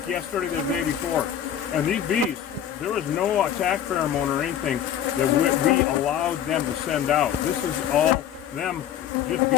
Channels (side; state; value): right; quieter; 9.9 dB